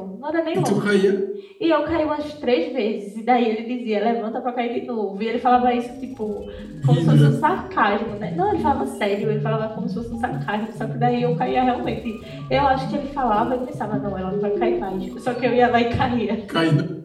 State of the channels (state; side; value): identical; both; correlation 1.00